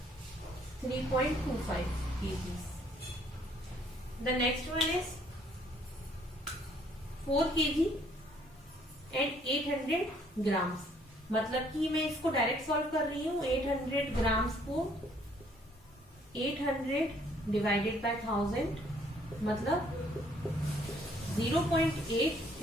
3.25 kg। The next one is 4 kg and 800 grams, मतलब कि मैं इसको डायरेक्ट सॉल्व कर रही हूँ। 800 ग्राम्स को 800 डिवाइडेड बाय 1000, मतलब 0.8,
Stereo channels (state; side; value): normal; both; correlation 0.63